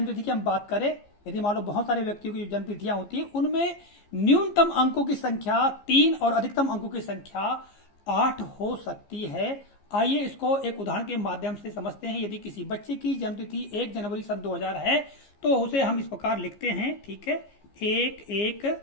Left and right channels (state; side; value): late; right; 15 ms